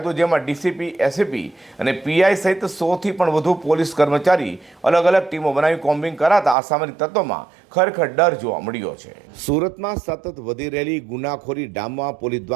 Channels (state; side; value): drops out; left; at 6.6 s